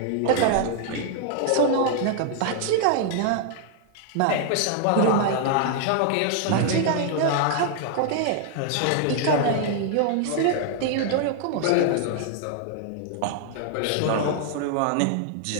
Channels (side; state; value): both; different; correlation 0.00